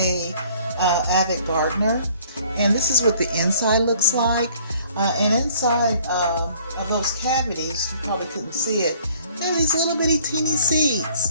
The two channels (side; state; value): both; inverted; correlation -0.57